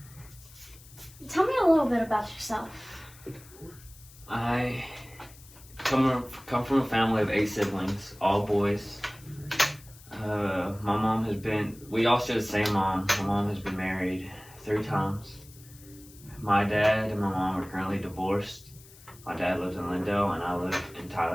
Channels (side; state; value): left; noise; hiss, 22 dB below the sound